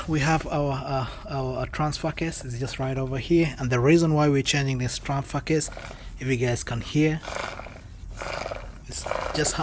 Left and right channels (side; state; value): both; identical; correlation 1.00